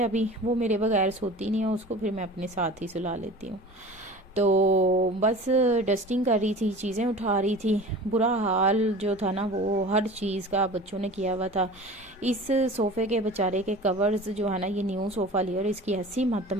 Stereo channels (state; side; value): normal; both; correlation 0.39